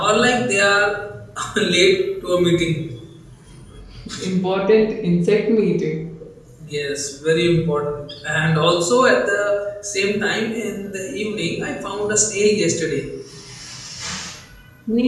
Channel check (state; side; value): identical; both; correlation 1.00